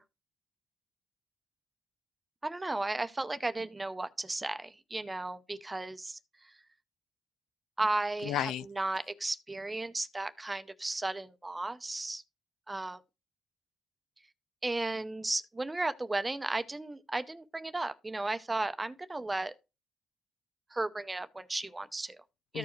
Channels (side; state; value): both; normal; correlation 0.95